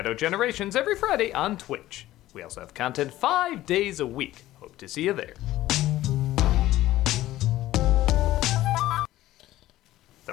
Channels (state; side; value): quieter; right; 15.3 dB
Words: Generations every Friday on Twitch. We also have content 5 days a week. Hope to see you there. The